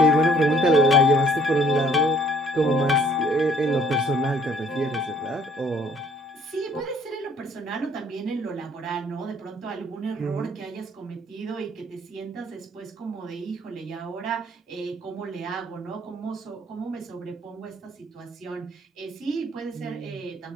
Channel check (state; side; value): normal; both; correlation 0.60